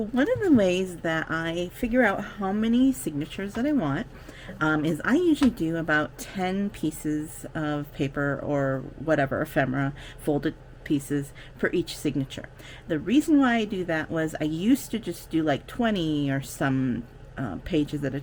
of the ways that I figure out how many signatures that I want is I usually do about 10 pieces of paper or whatever, ephemera, folded pieces for each signature. The reason why I do that was I used to just do like 20 or some pages at a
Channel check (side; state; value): both; identical; correlation 1.00